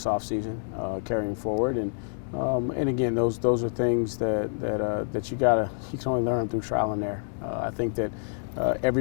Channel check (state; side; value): silent; right; digital silence